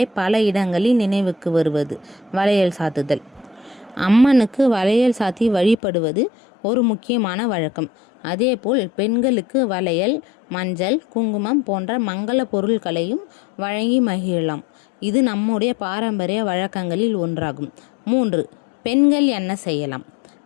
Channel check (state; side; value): drops out; right; at 5.8 s